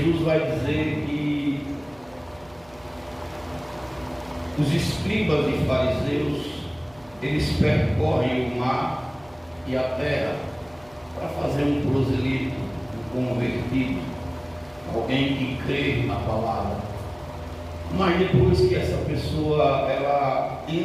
vai dizer que os escribas e fariseus, eles percorrem o mar e a terra para fazer um prosélito, um convertido, alguém que crê na palavra. Mas depois que essa pessoa ela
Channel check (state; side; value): noise; right; hum, 27 dB below the sound